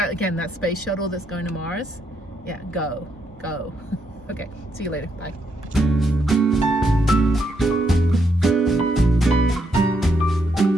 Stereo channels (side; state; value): both; normal; correlation 0.77